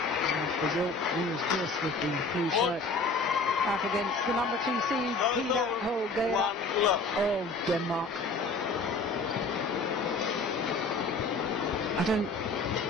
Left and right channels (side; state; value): right; quieter; 3.5 dB